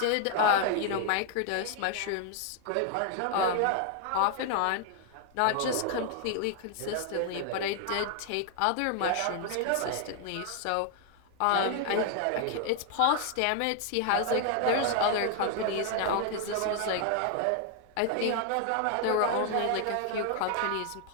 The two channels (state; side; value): different; both; correlation 0.00